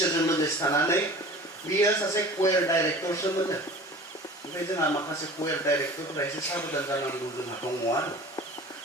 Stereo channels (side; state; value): both; normal; correlation 0.41